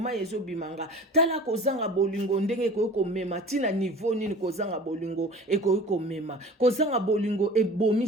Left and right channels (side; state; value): both; normal; correlation 0.41